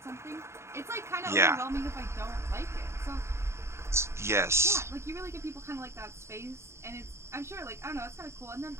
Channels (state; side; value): late; left; 0.13 ms